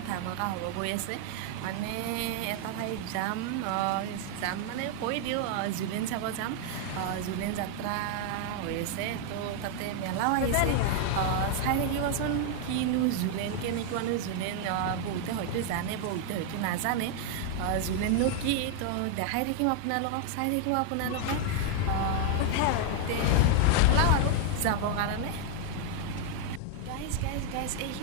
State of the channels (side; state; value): both; different; correlation 0.00